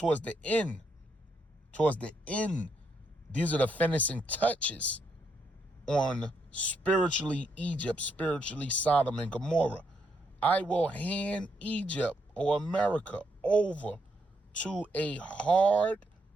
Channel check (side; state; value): both; normal; correlation 0.77